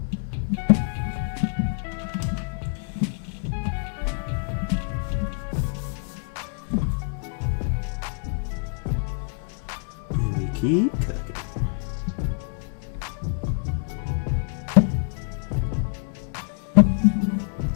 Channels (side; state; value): right; silent; 57 dB below the other